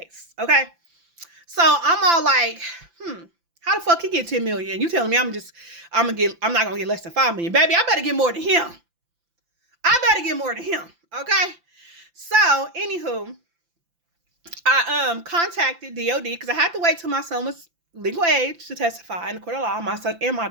Okay. So I'm all like, how the fuck he get 10 million? You telling me I'm not gonna get less than 5 million. Baby, I better get more than him. Okay. So, anywho, I contacted DOD because I had to wait till my son was legal age to testify in the court of law, my son and my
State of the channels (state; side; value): late; left; 5.9 ms